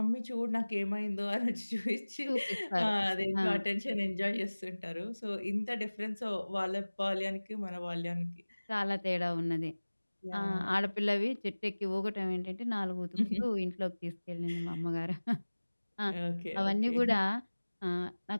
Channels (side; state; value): both; inverted; correlation -1.00